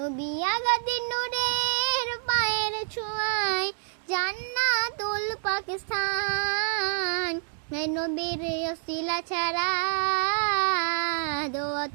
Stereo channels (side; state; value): left; silent; digital silence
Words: আগাদি নূরের পায়ের ছোঁয়াই জান্নাতুল পাকিস্তান। নবীর ওসিলা ছাড়া দোয়া